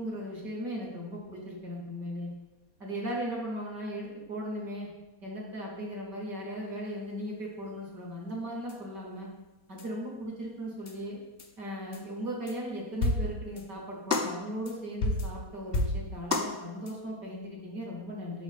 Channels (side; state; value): left; late; 4.2 ms